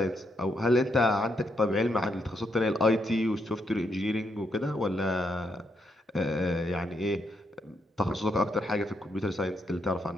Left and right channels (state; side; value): normal; both; correlation 0.78